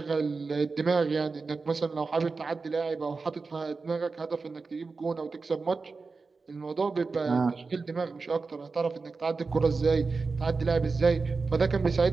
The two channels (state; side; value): quieter; left; 4.3 dB